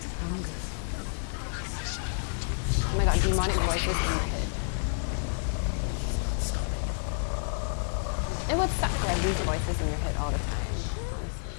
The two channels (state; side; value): silent; right; digital silence